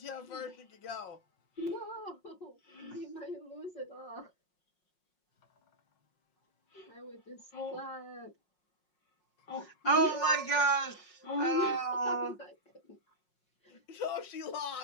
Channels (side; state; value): right; late; 5.5 ms